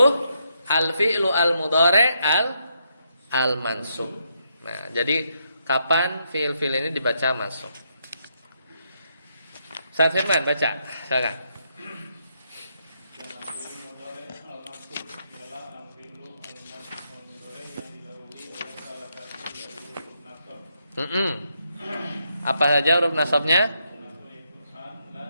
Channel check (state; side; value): inverted; both; correlation -0.78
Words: al-fi'lu al-mudhari' al-mansub. Nah, jadi kapan fi'il-fi'il ini dibaca mansub? Ustaz Firman baca, silakan. Apa saja huruf nasabnya?